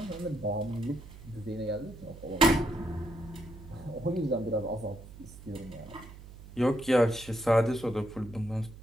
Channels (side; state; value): right; noise; hum, 16 dB below the sound